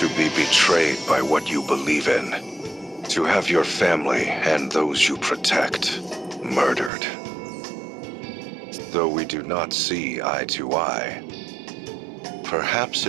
be betrayed by what you believe in. To have your family and those you protect murdered. Though we do not see eye to eye, perhaps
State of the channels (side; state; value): left; drops out; at 6.9 s